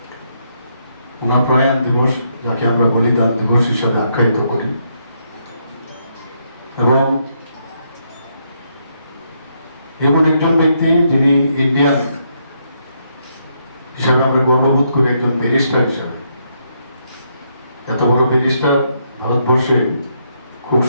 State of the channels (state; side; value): inverted; both; correlation -0.76